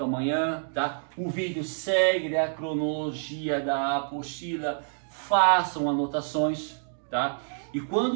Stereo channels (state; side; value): silent; left; digital silence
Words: amanhã, tá? O vídeo segue a cronologia da apostila, façam anotações, tá? E